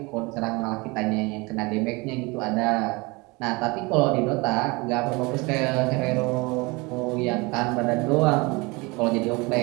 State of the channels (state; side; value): quieter; left; 25.6 dB